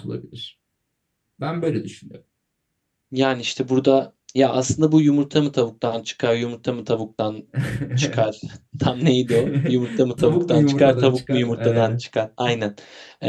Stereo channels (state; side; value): identical; both; correlation 1.00